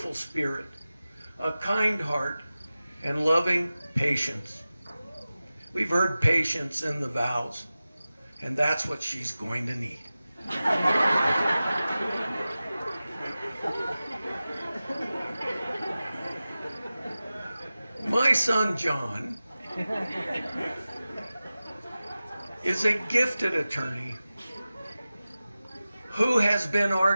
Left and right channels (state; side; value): inverted; both; correlation -0.96